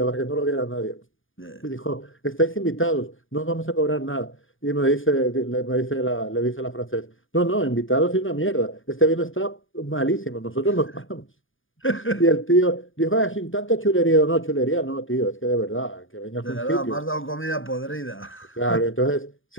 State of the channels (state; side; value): late; right; 0.58 ms